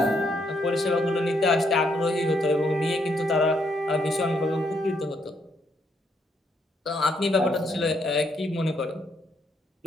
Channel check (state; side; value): normal; both; correlation 0.74